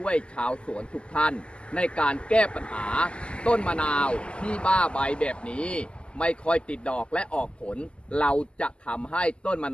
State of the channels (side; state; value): right; late; 0.052 ms